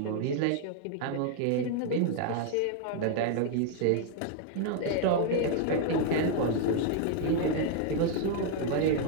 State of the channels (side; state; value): both; different; correlation 0.00